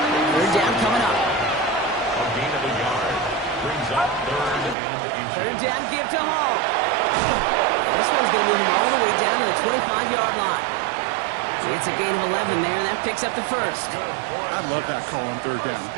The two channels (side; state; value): left; drops out; at 4.8 s